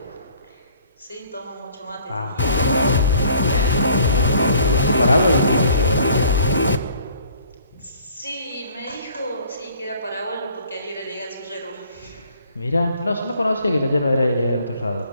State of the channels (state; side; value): inverted; both; correlation -0.57